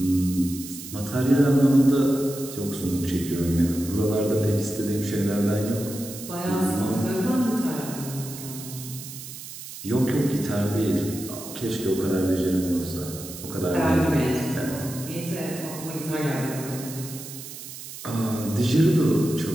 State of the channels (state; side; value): noise; right; hiss, 12 dB below the sound